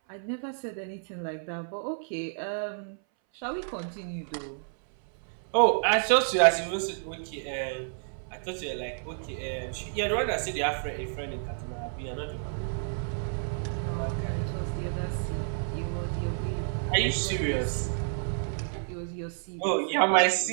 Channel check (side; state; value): left; silent; 58 dB below the other